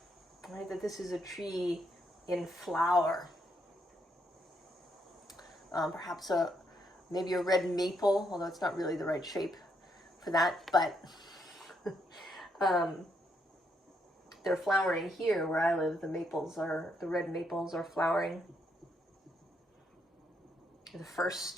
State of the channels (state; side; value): normal; both; correlation 0.76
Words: Right? That this is a tree in flower. Perhaps maybe a red maple, although it's not really the right shape for that, but they're flowering here where I live. The red maples are flowering. The